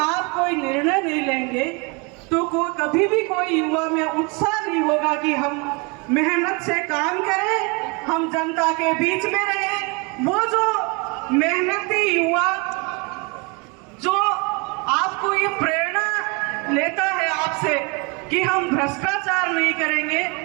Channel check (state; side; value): quieter; left; 29.9 dB